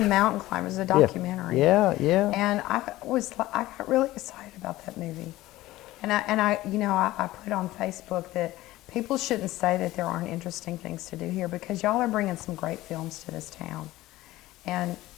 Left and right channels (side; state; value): right; quieter; 17.0 dB